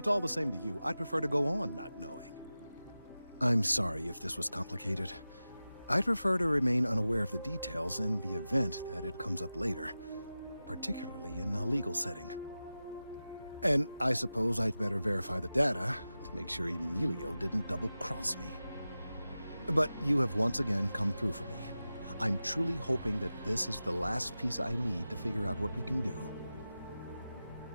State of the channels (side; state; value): both; inverted; correlation -0.95